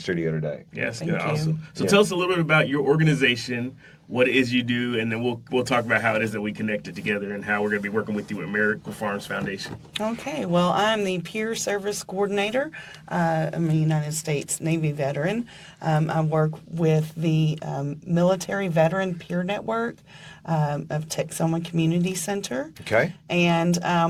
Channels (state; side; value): identical; both; correlation 1.00